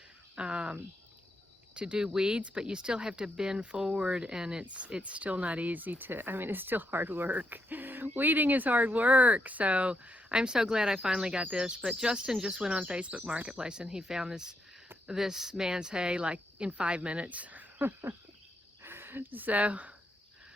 do weeds, but you still have to bend forward, and it's still not easy to, I mean, it's still hard work. Weeding is hard work, so I'm so glad I finally got this. But Justin just went on Facebook Marketplace and he found this man's hay like in 5 minutes. So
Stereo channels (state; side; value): normal; both; correlation 0.80